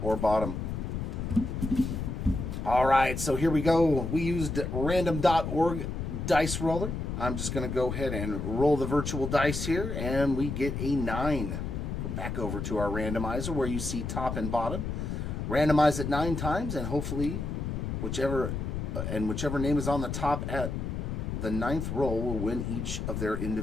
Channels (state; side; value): noise; left; rumble, 3 dB below the sound